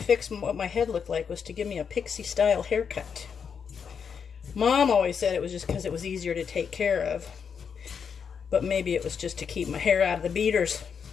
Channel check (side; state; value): right; quieter; 6.7 dB